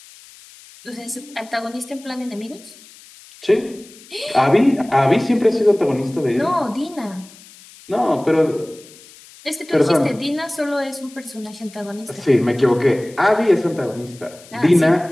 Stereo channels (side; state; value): left; noise; hiss, 22 dB below the sound